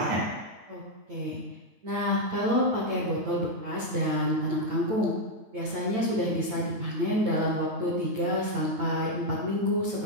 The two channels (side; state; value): left; late; 9.0 ms